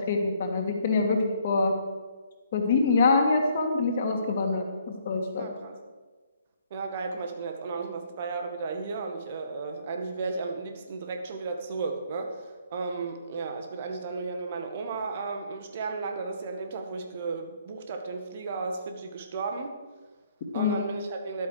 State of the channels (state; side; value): inverted; both; correlation -0.66